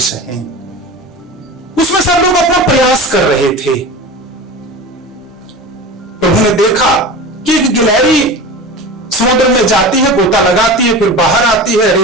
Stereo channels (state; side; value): normal; both; correlation 0.32